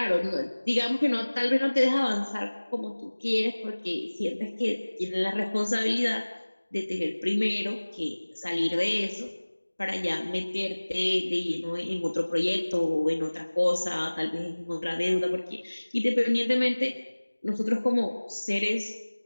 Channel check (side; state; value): both; inverted; correlation -1.00